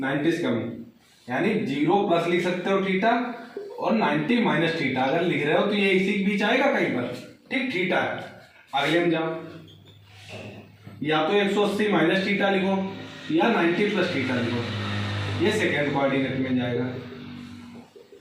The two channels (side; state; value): both; identical; correlation 1.00